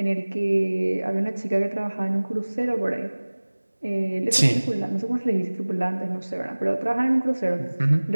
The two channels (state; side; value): inverted; both; correlation -1.00